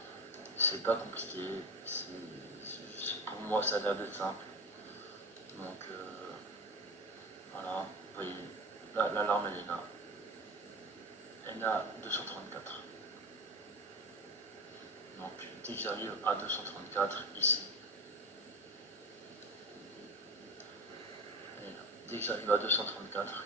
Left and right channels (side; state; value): both; normal; correlation 0.25